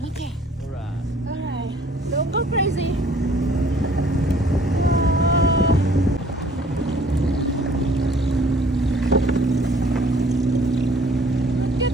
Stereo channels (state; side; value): normal; both; correlation 0.57